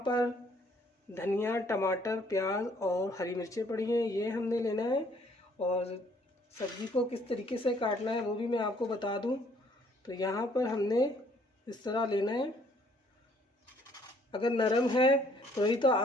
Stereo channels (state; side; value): normal; both; correlation 0.63